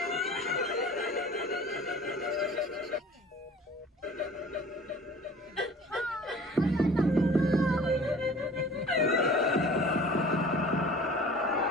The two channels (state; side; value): normal; both; correlation 0.45